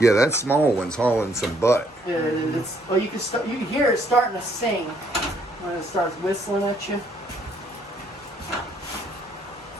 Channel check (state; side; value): normal; both; correlation 0.68